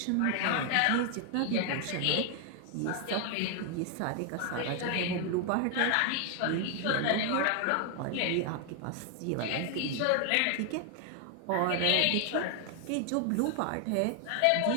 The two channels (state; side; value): different; both; correlation 0.00